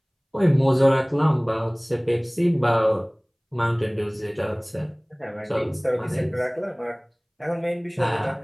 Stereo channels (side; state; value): both; identical; correlation 1.00